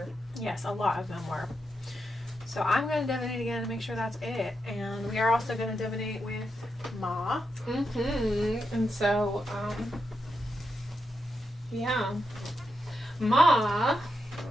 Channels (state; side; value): normal; both; correlation 0.85